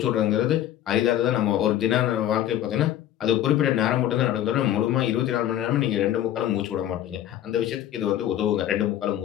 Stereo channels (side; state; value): right; quieter; 11.9 dB